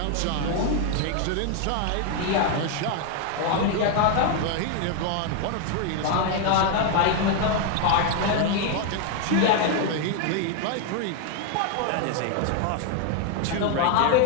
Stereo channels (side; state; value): both; different; correlation 0.01